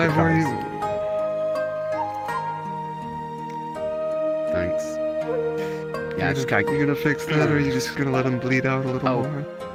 Ivor, cards. Thanks. Yeah, you just gonna, you gonna fix that, or are you just gonna let him bleed out a little Oh. more?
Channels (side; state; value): both; identical; correlation 1.00